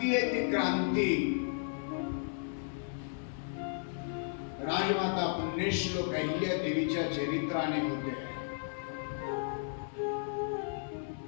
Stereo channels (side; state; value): right; silent; 55 dB below the other